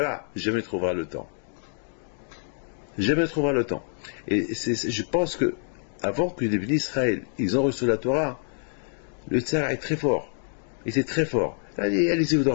jamais trouvera le temps. Jamais trouvera le temps. Et je pense que avant que les bénis Israël, ils ont reçu la Torah, le Tzara est très fort. Il était très fort. Allez-y vous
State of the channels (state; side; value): silent; right; 58 dB below the other